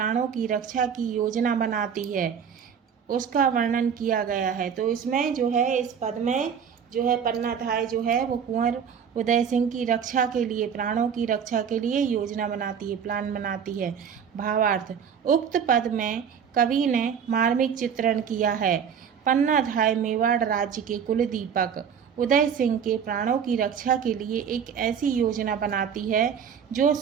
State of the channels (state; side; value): quieter; left; 7.5 dB